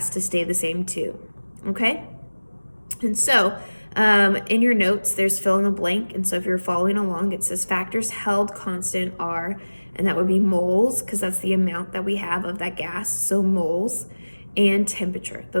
to stay the same too, okay? And so in your notes, there's fill in the blank. And so if you're following along, it says factors held constant are, and that would be moles, because that's the amount that we have of that gas. So moles and temperature.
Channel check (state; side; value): inverted; both; correlation -1.00